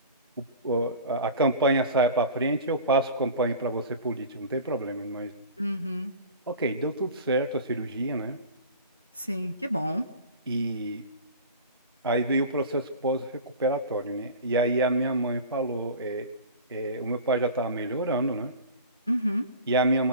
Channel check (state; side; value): inverted; both; correlation -0.37